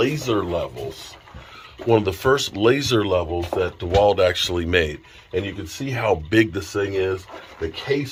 levels that DeWalt actually made. And you can see how big this thing is. The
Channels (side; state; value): both; identical; correlation 1.00